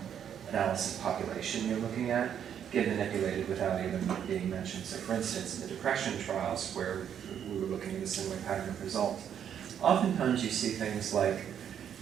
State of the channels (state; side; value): quieter; left; 8.9 dB